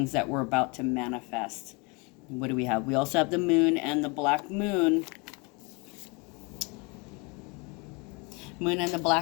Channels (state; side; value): quieter; right; 29.6 dB